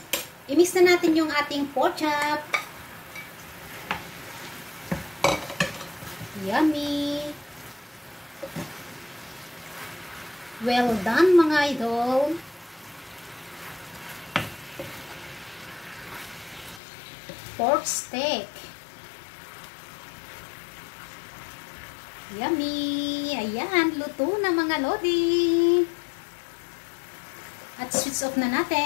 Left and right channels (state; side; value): drops out; right; at 16.8 s